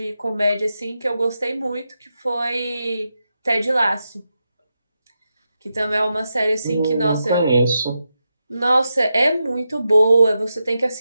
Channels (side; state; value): both; inverted; correlation -0.88